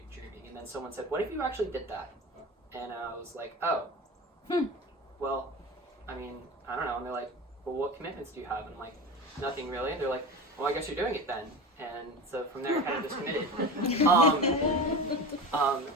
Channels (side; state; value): both; normal; correlation 0.30